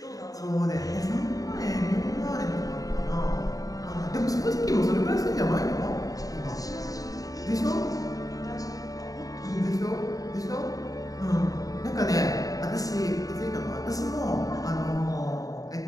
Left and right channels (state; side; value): late; right; 0.17 ms